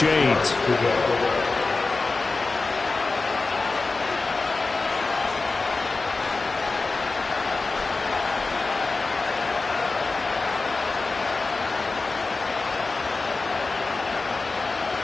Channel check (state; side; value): quieter; right; 3.7 dB